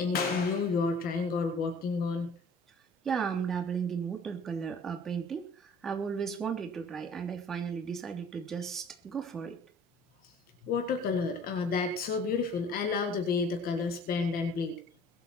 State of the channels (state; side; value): normal; both; correlation 0.51